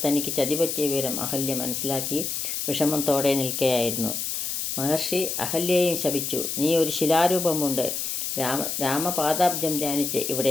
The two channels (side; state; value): left; noise; hiss, 2 dB below the sound